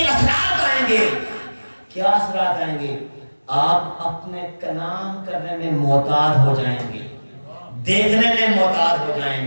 اثرات آئیں گے۔ کیا اثرات آئیں گے؟ آپ اپنے کلام کرنے میں محتاط ہو جائیں گے، دیکھنے میں محتاط ہو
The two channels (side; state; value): both; inverted; correlation -1.00